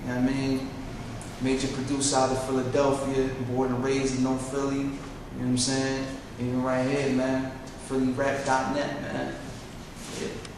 know what I mean? Major producer out of Philadelphia, born and raised in North Philly, you know what I'm saying? Even right here, man, PhillyRap.net, man. Yeah.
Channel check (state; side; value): identical; both; correlation 1.00